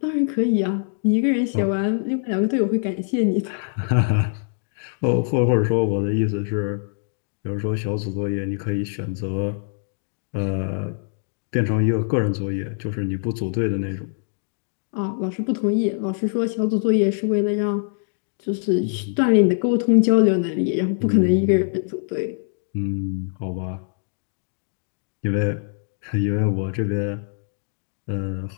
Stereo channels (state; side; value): silent; right; digital silence